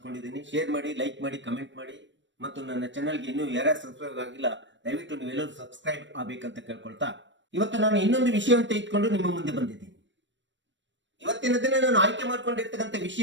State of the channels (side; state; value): left; late; 0.54 ms